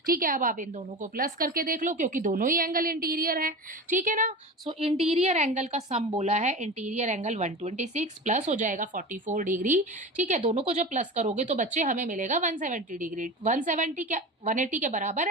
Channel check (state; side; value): normal; both; correlation 0.30